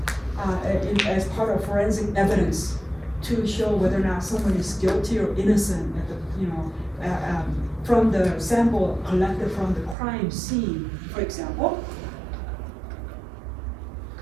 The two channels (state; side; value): drops out; left; at 10.0 s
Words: as part of forensic evidence to show whether or not someone is guilty or innocent at the, from the sample collected from the crime scene, for example.